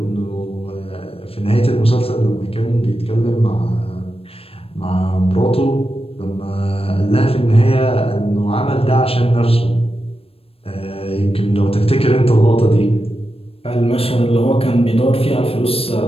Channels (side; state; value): right; late; 0.28 ms